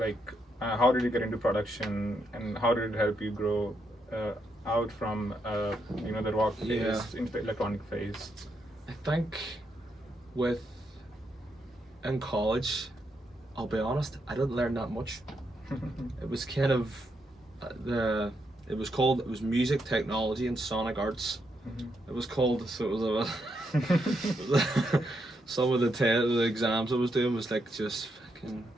how did you get into production, and how did it help you grow out from the rock phase into the electronic phase? I think in college, I'll be honest, I didn't learn that much. It was kind of it was music technology and sonic arts. It was called, so it was some of the exams I was doing was like just fucking,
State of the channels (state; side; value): normal; both; correlation 0.80